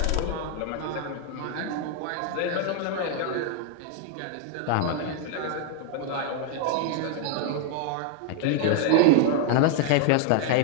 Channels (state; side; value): different; both; correlation 0.00